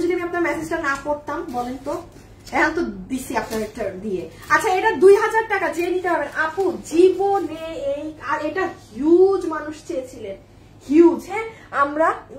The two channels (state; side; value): identical; both; correlation 1.00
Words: যদি আমি আপনার মেসেজটা না পড়তাম বলেন তো, এখন তো দিছি আপনার একটা দিয়ে। আচ্ছা এটা 2000 টাকা, যে নিতে পারবেন আপু জীবনে এই, আর এটা হিউজ মানুষ চেয়েছিলেন, হিউজ। হ্যাঁ আমরা